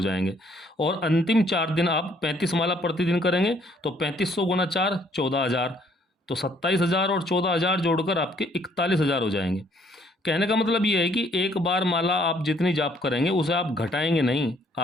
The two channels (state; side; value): normal; both; correlation 0.64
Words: जाएंगे। और अंतिम 4 दिन आप 35 माला प्रतिदिन करेंगे तो 3500 गुना 4 14,000, तो 27,000 और 14,000 जोड़कर आपके 41,000 हो जाएंगे। कहने का मतलब ये है कि एक बार माला आप जितनी जाप करेंगे उसे आप घटाएंगे नहीं,